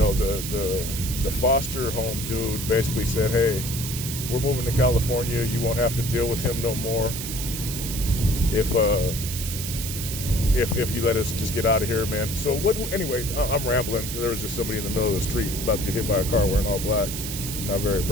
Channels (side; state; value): right; noise; hiss, 6 dB below the sound